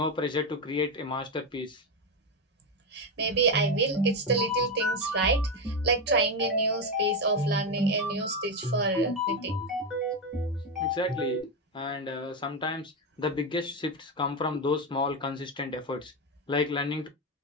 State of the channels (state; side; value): normal; both; correlation 0.10